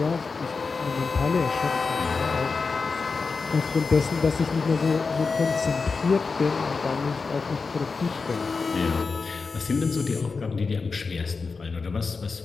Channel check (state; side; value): quieter; right; 4.6 dB